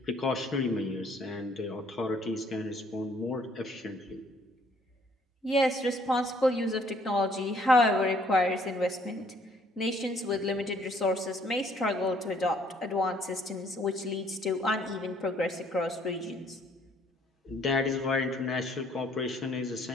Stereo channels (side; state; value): both; normal; correlation 0.62